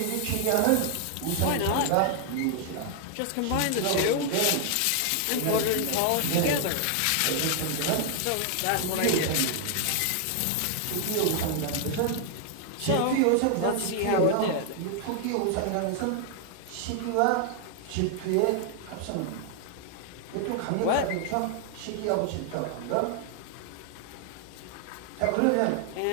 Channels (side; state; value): both; different; correlation 0.00